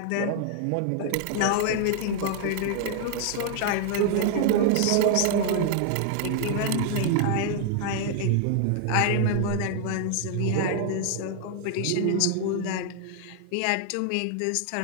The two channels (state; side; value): different; both; correlation 0.00